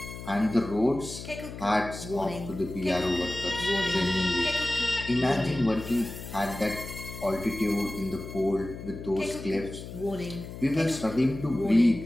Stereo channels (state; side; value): noise; left; hum, 11 dB below the sound